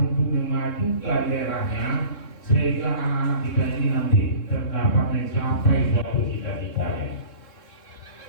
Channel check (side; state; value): right; late; 3.7 ms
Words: untuk memajukan daerahnya sehingga anak-anak kita ini nanti terdapat mencapai suatu cita-citanya.